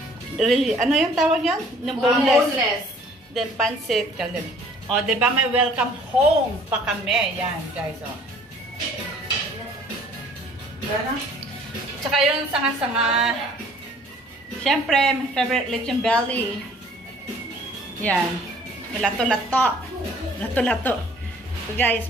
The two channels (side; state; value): both; normal; correlation 0.55